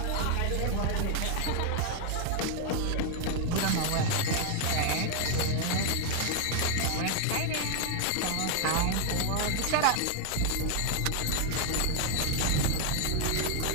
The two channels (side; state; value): both; different; correlation 0.00